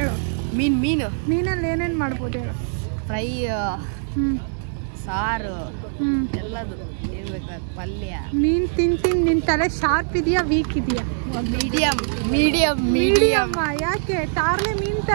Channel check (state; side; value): silent; left; digital silence